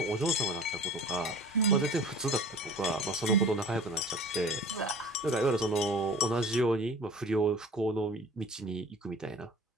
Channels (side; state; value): both; normal; correlation 0.43